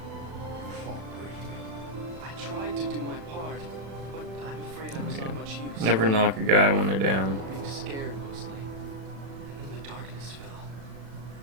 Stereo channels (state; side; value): late; left; 36 ms